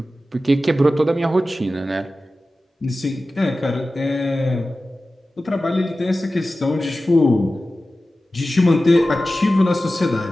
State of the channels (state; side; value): normal; both; correlation 0.95